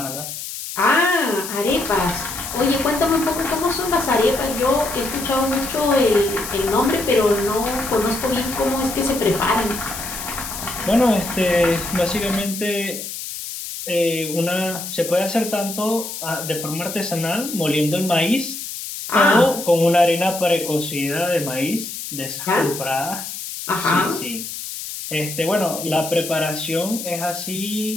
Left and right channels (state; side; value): noise; left; hiss, 8 dB below the sound